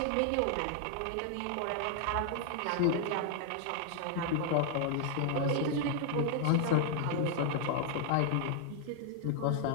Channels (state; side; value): different; both; correlation 0.00